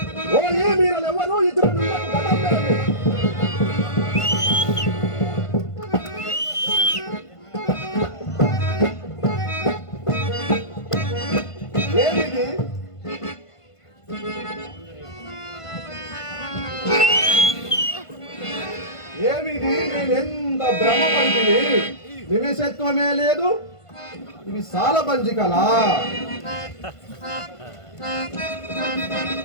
ఓయి మీరెవరు? ఇతరులు ఏమిది? ఏమిది? నేనెంత భ్రమపడితిని, నిమిషత్వమే లేదు. ఇవి సాలబంజికలా?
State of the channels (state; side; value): late; right; 1.5 ms